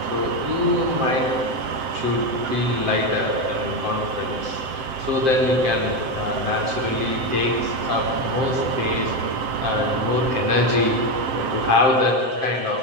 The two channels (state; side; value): late; left; 7.7 ms